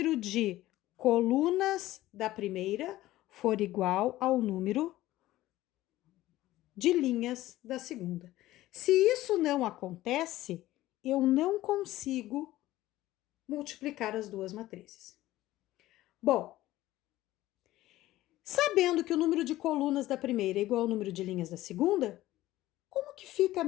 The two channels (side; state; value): right; quieter; 15.9 dB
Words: de colunas da primeira for igual ao número de linhas da segunda. Se isso não acontece, eu não consigo multiplicar as duas matrizes. Bom, sabendo que o número de colunas da primeira é igual ao número de linhas da segunda, como que fica a